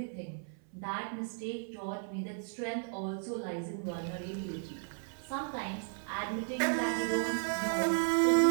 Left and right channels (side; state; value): left; silent; 55 dB below the other